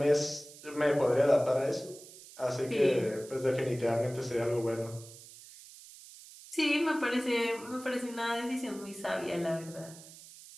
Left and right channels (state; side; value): noise; right; hiss, 18 dB below the sound